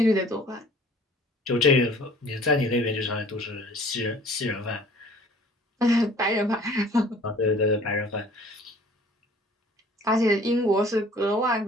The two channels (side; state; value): both; normal; correlation 0.51